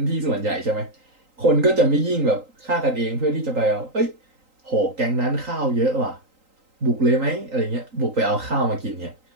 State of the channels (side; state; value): left; late; 3.8 ms